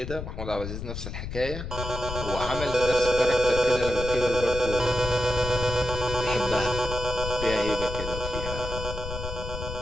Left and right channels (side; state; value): left; noise; rumble, 7 dB below the sound